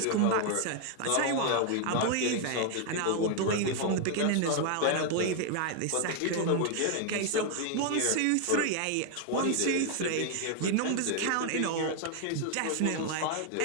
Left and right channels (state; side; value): different; both; correlation 0.00